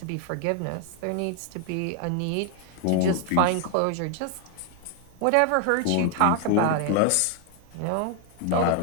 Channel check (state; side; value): different; both; correlation 0.00